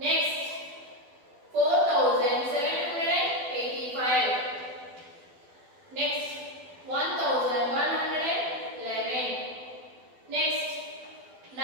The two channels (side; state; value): left; late; 12 ms